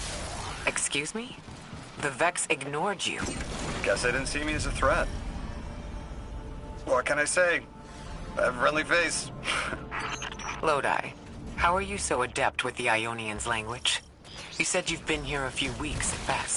Excuse me? The Vex ignored you. Guess they didn't see me as a threat. What can I say? I have a friendly face. Lodi, how are you so adept with the Ionian's language? You said you've been here a few weeks at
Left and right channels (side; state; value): both; identical; correlation 1.00